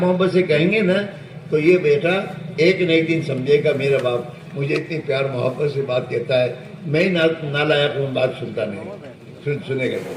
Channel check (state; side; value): identical; both; correlation 1.00